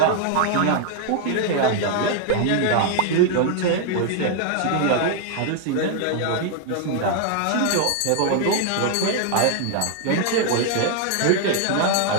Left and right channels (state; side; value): different; both; correlation 0.00